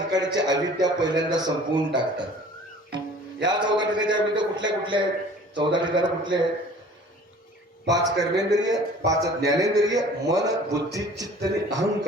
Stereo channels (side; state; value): both; normal; correlation 0.48